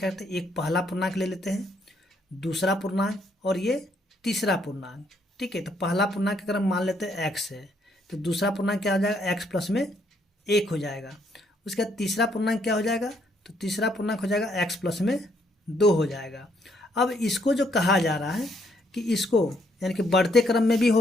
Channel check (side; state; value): both; normal; correlation 0.71